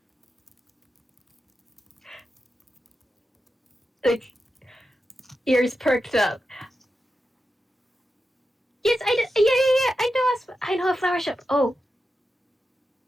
Like, ears perked up. Yes, I know a flower shop. Oh,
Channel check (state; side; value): normal; both; correlation 0.89